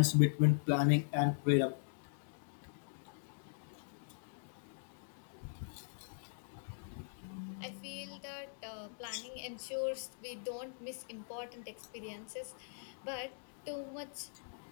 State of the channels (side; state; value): right; silent; digital silence